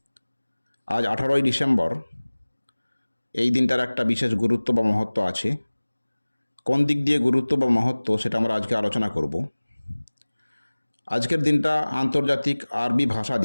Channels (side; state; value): both; inverted; correlation -1.00